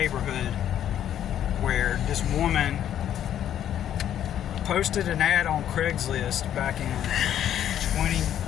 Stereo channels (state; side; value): quieter; right; 10.5 dB